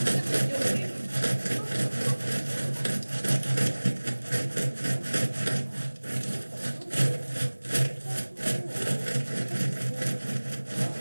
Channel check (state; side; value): inverted; both; correlation -1.00